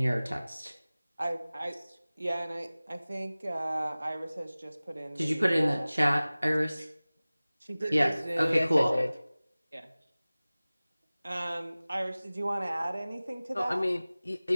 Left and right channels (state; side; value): inverted; both; correlation -0.98